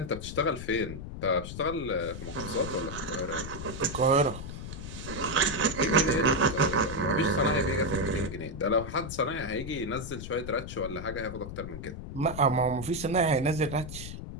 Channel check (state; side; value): noise; left; rumble, 9 dB below the sound